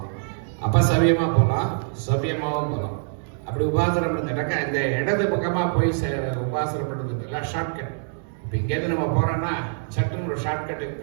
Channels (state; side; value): silent; left; digital silence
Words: அப்போ சவியமாக போகலாம், சவியமாகவும் போகலாம். அப்படி உபாசனை பண்ணுறதுனாக்கா இந்த இடது பக்கமாக போய் உபாசனை பண்ணுறதுக்கு இல்லை ஷார்ட்கட். இப்போ இங்கேருந்து நம்ம போகிறோன்னா சட்டுன்னு ஒரு ஷார்ட்கட்டு